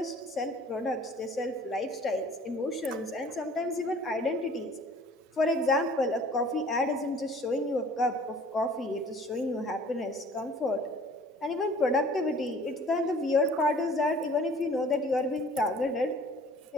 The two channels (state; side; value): normal; both; correlation 0.51